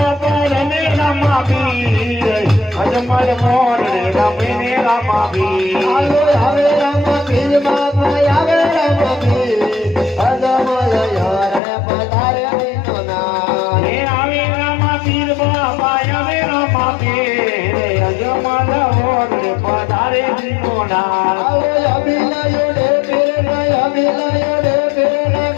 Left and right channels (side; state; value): right; drops out; at 11.6 s